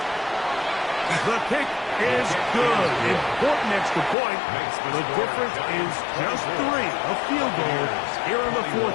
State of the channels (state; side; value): drops out; right; at 4.2 s